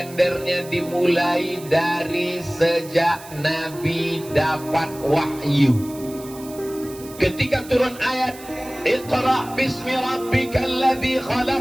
dimulai dari sejak Nabi dapat wahyu? Ketika turun ayat Iqra bismi rabbikal ladzi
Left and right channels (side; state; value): right; noise; hiss, 18 dB below the sound